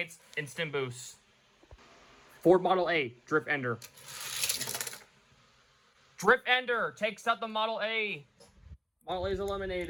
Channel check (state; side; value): identical; both; correlation 1.00